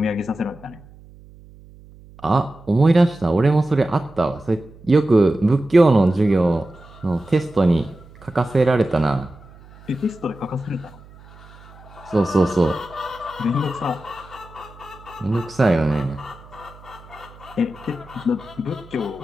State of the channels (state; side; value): noise; right; hum, 22 dB below the sound